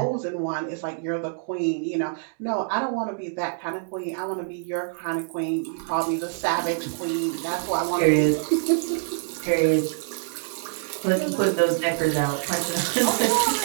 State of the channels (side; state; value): left; silent; digital silence